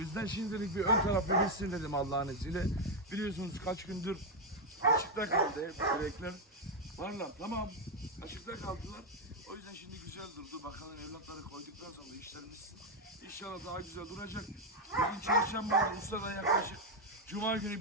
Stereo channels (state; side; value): normal; both; correlation 0.03